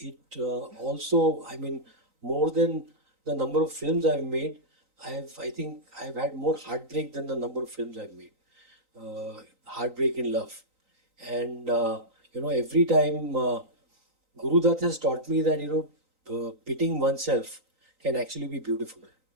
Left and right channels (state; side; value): late; left; 3.9 ms